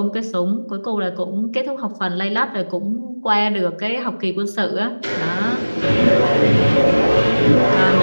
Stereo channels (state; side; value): inverted; both; correlation -1.00